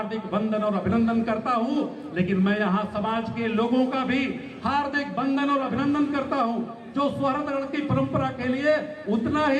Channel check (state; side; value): identical; both; correlation 1.00